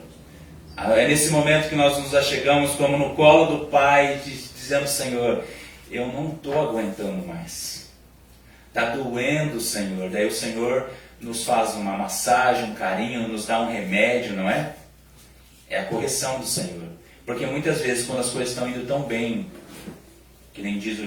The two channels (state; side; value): identical; both; correlation 1.00